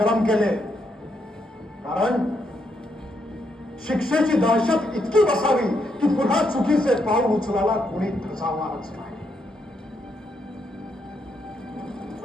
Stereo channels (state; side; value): normal; both; correlation 0.78